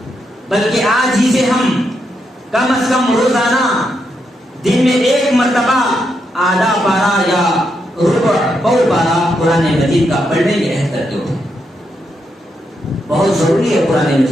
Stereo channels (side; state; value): both; normal; correlation 0.81